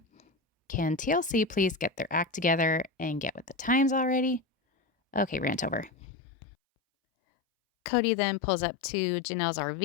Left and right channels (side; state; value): right; drops out; at 5.9 s